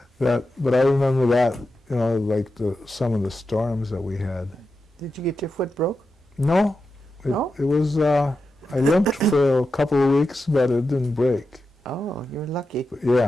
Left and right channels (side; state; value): both; normal; correlation 0.89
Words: But I remember that, like some of the storms that we had. Did you get your foot broke? No. No? It was, I limped for a couple of weeks, but it didn't break. Oh, you're lucky.